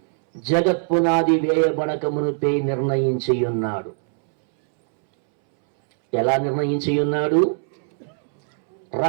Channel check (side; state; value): left; silent; 65 dB below the other